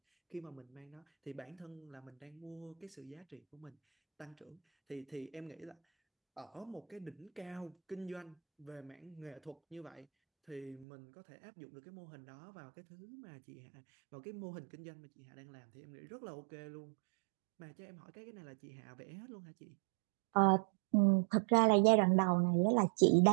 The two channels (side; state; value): left; drops out; at 10.9 s